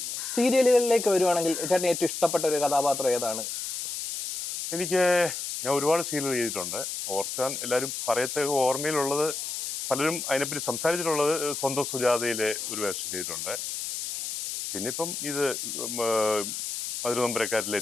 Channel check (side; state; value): left; noise; hiss, 5 dB below the sound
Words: സീരിയലുകളിലേക്ക് വരുവാണെങ്കിൽ ചേട്ടന് ഏറ്റവും ഇഷ്ടപ്പെട്ട ഒരു കഥാപാത്രം ഏതാണ്? ഞാൻ ഒരുപാട് സീരിയൽ ചെയ്തിട്ടുണ്ട്. ഓർക്കാൻ എല്ലാവരും പറയത്ത ഓർമ്മയിലുള്ളത്, പലരും അതിനെപ്പറ്റി സംസാരിച്ചിട്ടുള്ളത് സ്വന്തം സുജാതയിലെ ഒരു വേഷം ചെയ്തിട്ടുണ്ട്. പിന്നെ ഇപ്പം ഇത് മധുരനമ്പരക്കാരിലെ